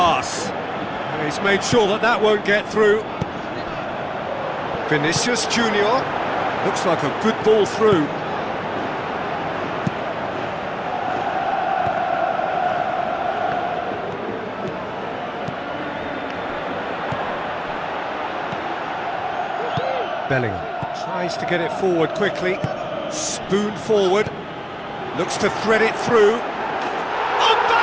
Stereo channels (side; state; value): both; identical; correlation 1.00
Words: He's made sure that that won't get through. Vinicius Junior. Looks like a good ball through. Bellingham tries to get it forward quickly. Spoon forward, looks to thread it through.